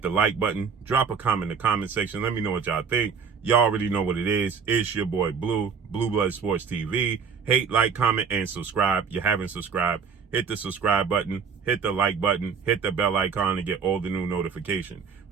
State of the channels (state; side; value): quieter; left; 6.2 dB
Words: the like button. Drop a comment in the comment section. Let me know what y'all think. Y'all already know what it is. It's your boy Blue, Blue Blood Sports TV. Hate, like, comment, and subscribe. You haven't subscribed, hit the subscribe button, hit the like button, hit the bell icon to get all the new notifications.